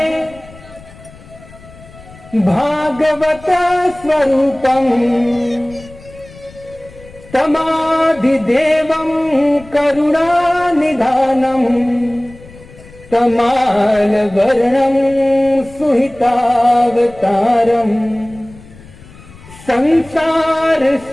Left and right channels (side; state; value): left; noise; rumble, 21 dB below the sound